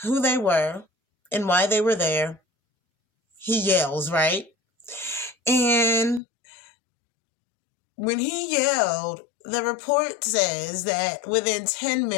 who they were and why they were there, he yells, right? And when he yelled, the report says that within 10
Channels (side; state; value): right; drops out; at 6.2 s